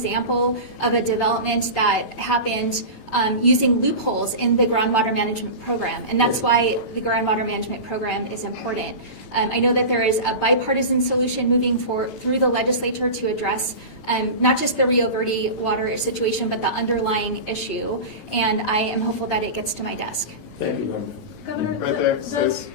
of a development that happened using loopholes in the groundwater management program, and that's why the groundwater management program is important. I know that there is a bipartisan solution moving through the legislature to address not just the Rio Verde water situation, but the underlying issue, and I am hopeful that it gets to my desk. Thank you very much. Governor, Right there, those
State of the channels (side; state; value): right; late; 9.0 ms